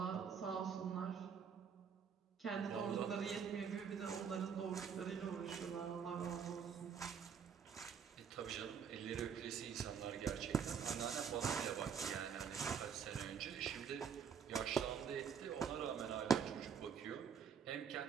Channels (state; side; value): quieter; left; 7.1 dB